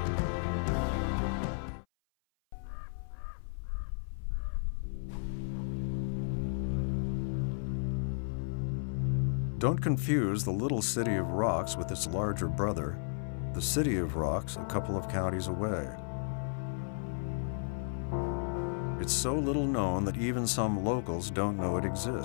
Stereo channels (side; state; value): right; silent; 55 dB below the other